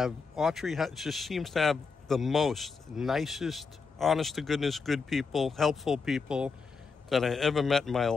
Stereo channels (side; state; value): right; quieter; 5.0 dB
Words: seems to have the most nicest, honest to goodness, good people, helpful people that I ever met in my